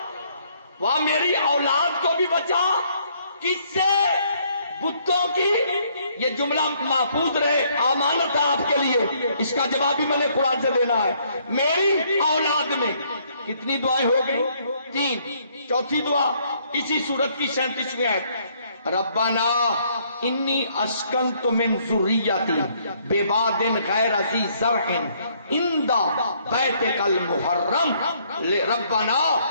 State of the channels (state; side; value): inverted; both; correlation -0.67